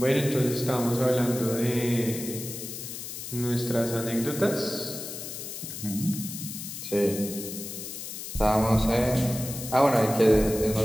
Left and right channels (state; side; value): noise; left; hiss, 8 dB below the sound